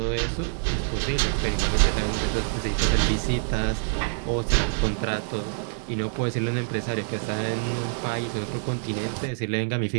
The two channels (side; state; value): left; silent; 61 dB below the other